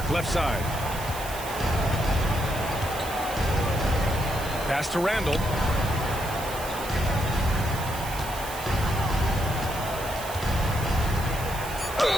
left side. Pass to Randall.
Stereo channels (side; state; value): right; noise; hiss, 11 dB below the sound